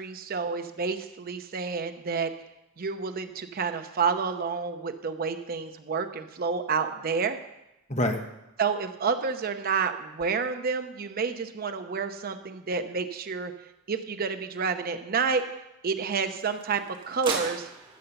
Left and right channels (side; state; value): left; quieter; 4.7 dB